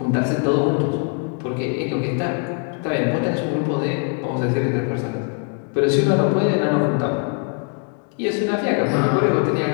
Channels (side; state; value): right; quieter; 35.9 dB